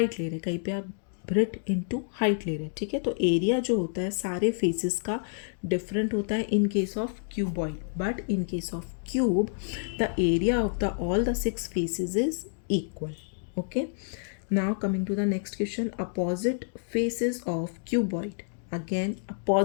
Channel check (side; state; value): right; silent; digital silence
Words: ले रहे हैं, कहीं पे आप ब्रेड इनटू हाइट ले रहे हैं। ठीक है, तो एरिया जो होता है सारे फेसेस का डिफरेंट होता है इन case of cuboid, but in case of cube the area of the all the 6 faces is equal. Okay, now coming to the next question, opposite faces of cuboid, again